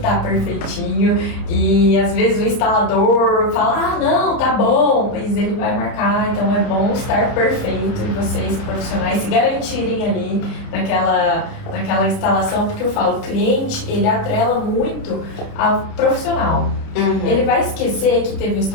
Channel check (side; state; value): right; late; 30 ms